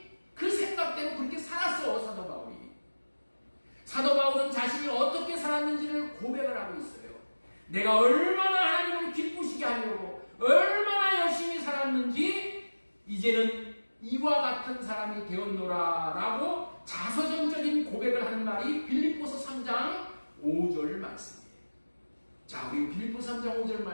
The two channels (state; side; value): inverted; both; correlation -1.00